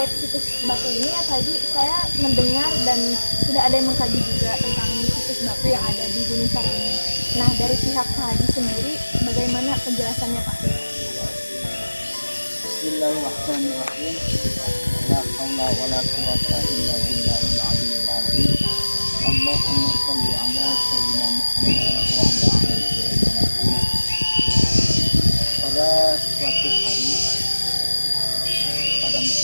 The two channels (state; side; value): inverted; both; correlation -1.00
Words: situs batu ini ya Pak Haji, saya mendengar dan sudah ada yang mengkaji juga tentang situs batu yang ada di Gunung Sari ini. Nah, dari pihak Pak Haji sendiri, bagaimana penjelasannya Pak? Bismillahirrahmanirrahim. La haula wala quwata illa billahil aliyyil azim. Allahumma shalli ala sayyidina Muhammad wa ala ali sayyidina Muhammad. Pada suatu hari pada